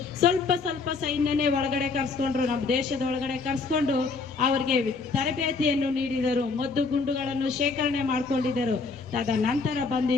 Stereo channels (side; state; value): right; quieter; 4.3 dB